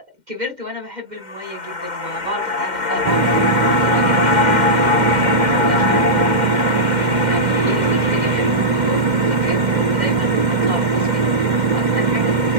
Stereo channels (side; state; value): left; late; 2.1 ms